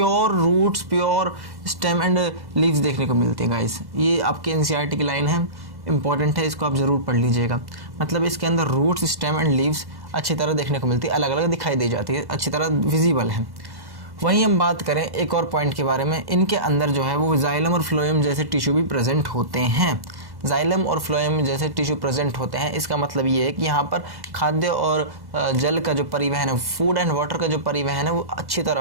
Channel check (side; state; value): left; late; 1.1 ms